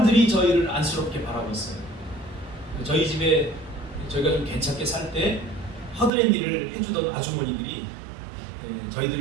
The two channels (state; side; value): drops out; left; at 6.1 s